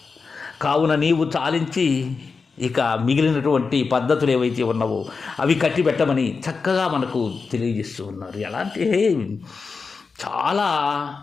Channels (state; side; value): quieter; right; 4.8 dB